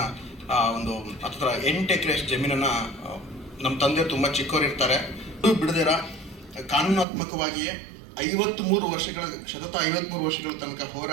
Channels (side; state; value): left; drops out; at 7.1 s